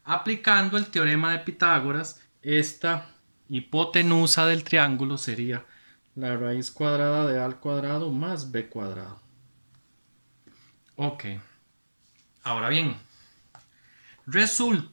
Aplicando el teorema de Pitágoras, esta hipotenusa del triángulo sería la raíz cuadrada de A al cuadrado más B cuadrado. Ok. Ahora bien,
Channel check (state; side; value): inverted; both; correlation -1.00